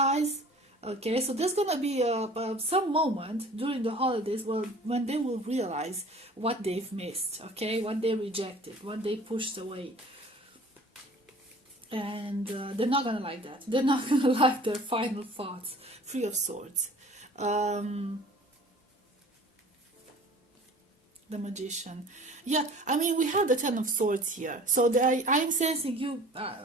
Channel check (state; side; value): normal; both; correlation 0.47